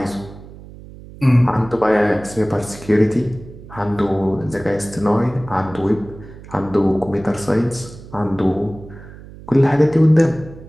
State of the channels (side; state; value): right; noise; hum, 17 dB below the sound